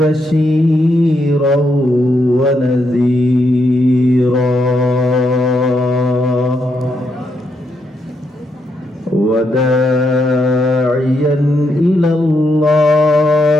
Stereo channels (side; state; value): both; normal; correlation 0.79